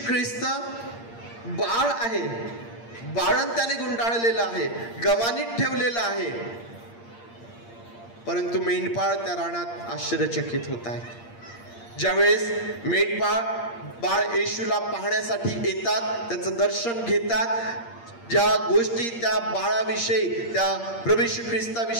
ख्रिस्त बाळ आहे, बाळंत्याने गुंडाळलेला आहे, गव्हाणीत ठेवलेला आहे, परंतु मेंढपाळ त्या रानात आश्चर्यचकित होत आहे. ज्यावेळेस मेंढपाळ बाळ येशूला पाहण्यासाठी येतात, त्याचं दर्शन घेतात, ज्या गोष्टी त्या बाळाविषयी, त्या प्रभू येशू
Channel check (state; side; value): late; right; 8.6 ms